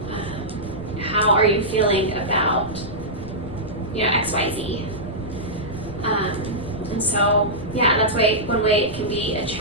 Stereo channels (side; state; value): left; noise; rumble, 13 dB below the sound